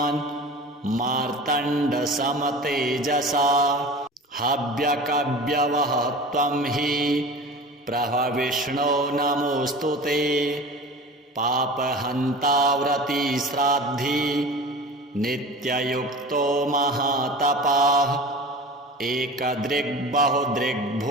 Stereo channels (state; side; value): normal; both; correlation 0.36